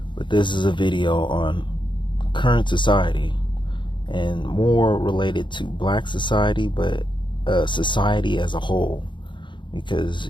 But this is a video on current society and more related to black society, but society as a whole, because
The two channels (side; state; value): right; late; 0.23 ms